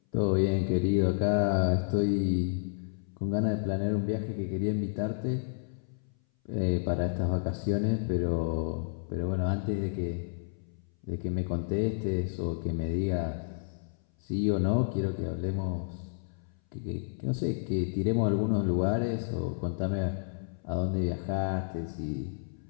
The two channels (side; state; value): right; silent; 57 dB below the other